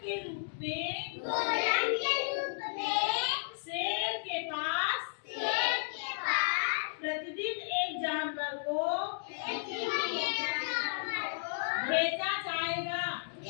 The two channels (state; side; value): silent; right; digital silence